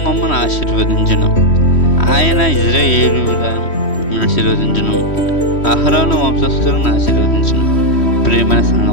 మమ్మను ఆశీర్వదించును, ఆయన ఇశ్రాయేలును ఆశీర్వదించును, అహరోను వంశస్థులను ఆశీర్వదించును. ప్రియమైన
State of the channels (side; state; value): right; late; 3.1 ms